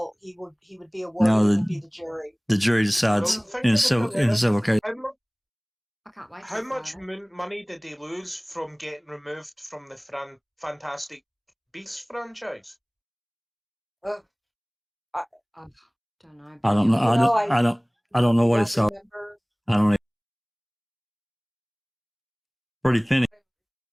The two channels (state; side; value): identical; both; correlation 1.00